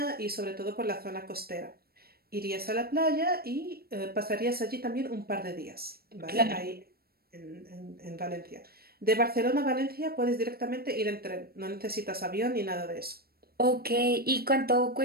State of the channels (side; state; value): left; late; 0.45 ms